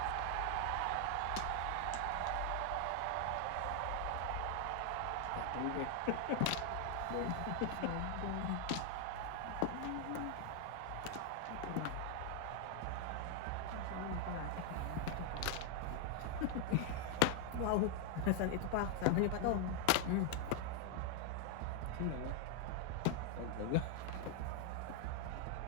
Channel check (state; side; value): different; both; correlation 0.00